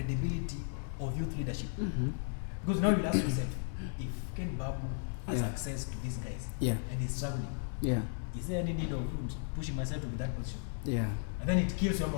of youth leadership. Because now you'll ask yourself, if Ken Babu has access to these guys and is struggling, is there any need of pushing myself to be that position? Yeah. And then it kills your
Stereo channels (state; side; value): silent; right; 54 dB below the other